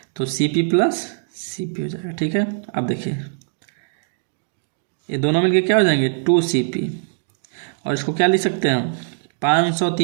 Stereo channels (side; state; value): left; silent; digital silence